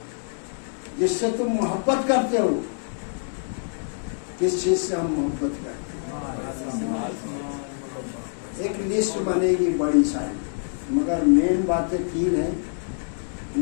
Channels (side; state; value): right; silent; digital silence